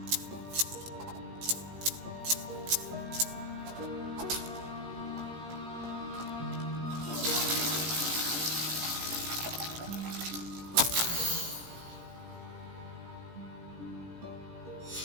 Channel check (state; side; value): late; left; 17 ms